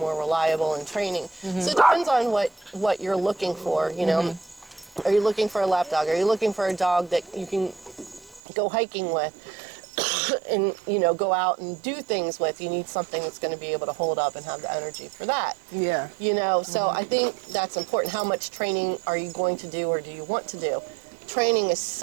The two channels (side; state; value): left; drops out; at 8.4 s